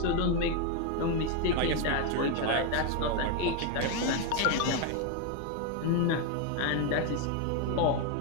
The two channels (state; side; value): different; both; correlation 0.01